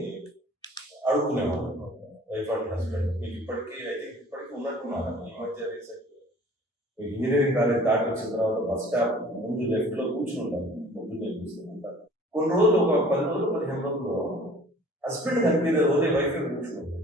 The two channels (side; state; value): both; normal; correlation 0.50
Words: అడుక్కునేవాళ్ళు. వైఫ్ అండ్ హస్బెండ్ మీకు ఇప్పటికీ ఇప్పటికీ ఉన్నట్టున్నారు. ఈ మధ్య రీసెంట్ ఇంజనీరింగ్ కాలేజ్ దాటి వచ్చిన తర్వాత బస్ స్టాప్ ముందు లెఫ్ట్ లో కూర్చుని ఉంటారు. పొద్దున్నే కూర్చుంటారు. కొన్ని రోజులు ఒక 10 రోజులు 15 రోజులు హస్బెండ్ కనిపించే ఓన్లీ వైఫ్ కూర్చుని